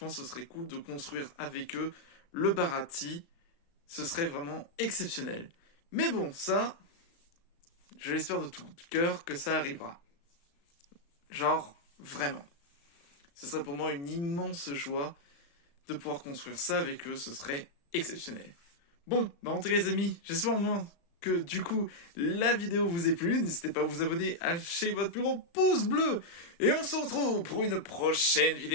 ce serait cool de construire avec eux le Barati, ce serait vraiment exceptionnel. Mais bon, ça, je l'espère de tout cœur que ça arrivera. Genre, vraiment. Ce serait pour moi une immense joie de pouvoir construire ça avec eux, ce serait exceptionnel. Bon, bah en tout cas les amis, j'espère au moins que du coup la vidéo vous ait plu. N'hésitez pas à vous abonner, à lâcher votre plus gros pouce bleu. Et on se retrouve pour une prochaine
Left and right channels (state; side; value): late; right; 35 ms